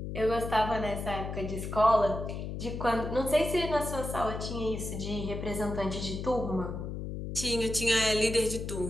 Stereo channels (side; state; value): left; noise; hum, 6 dB below the sound